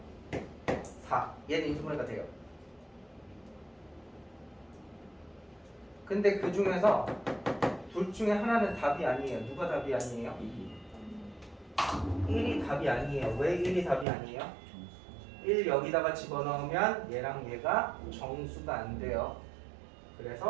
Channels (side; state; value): left; drops out; at 14.1 s